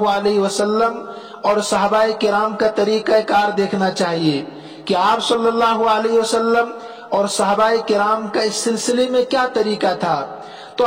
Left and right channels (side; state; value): both; identical; correlation 1.00